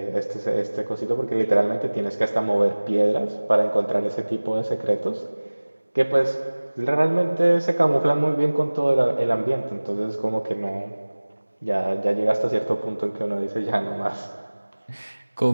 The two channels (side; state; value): both; inverted; correlation -1.00